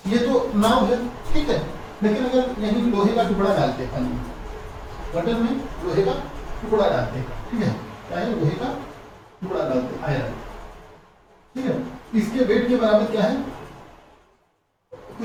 ये तो नाव है, ठीक है, लेकिन अगर यहीं लोहे का टुकड़ा डालते हैं पानी में, वाटर में लोहे का टुकड़ा डालते हैं, ठीक है, क्या है, लोहे का टुकड़ा डालते हैं, आयरन, ठीक है, इसके वेट के बराबर क्या है,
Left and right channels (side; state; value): both; identical; correlation 1.00